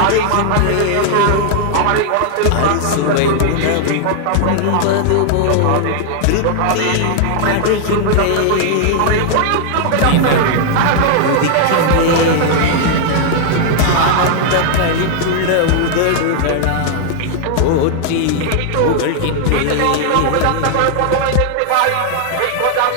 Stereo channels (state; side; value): different; both; correlation 0.00